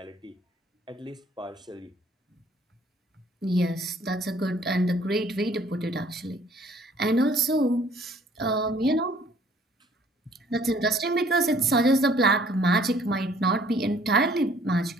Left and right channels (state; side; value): normal; both; correlation 0.58